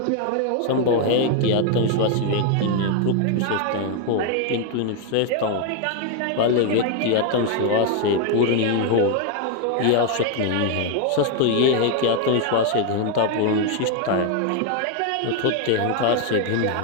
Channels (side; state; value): both; different; correlation 0.01